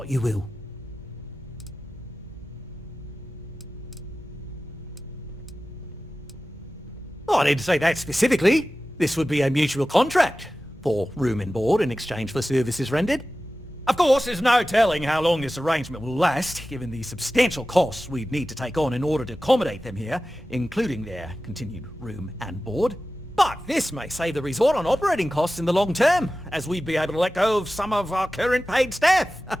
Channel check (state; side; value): normal; both; correlation 0.95